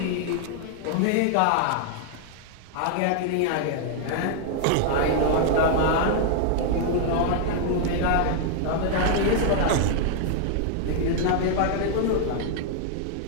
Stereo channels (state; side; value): different; both; correlation 0.00